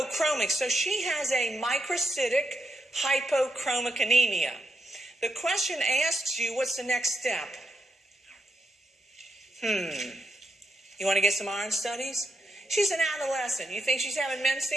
So she has a microcytic hypochromic anemia. The question asks you, what's the next step? You want to get some iron studies? She's an adolescent. You think she's having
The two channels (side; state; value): both; normal; correlation 0.82